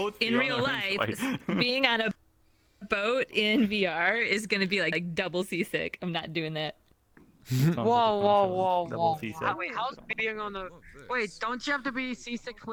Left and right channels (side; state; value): both; identical; correlation 1.00